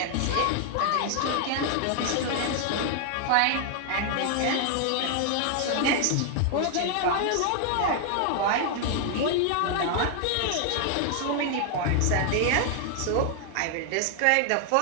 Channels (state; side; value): different; both; correlation 0.00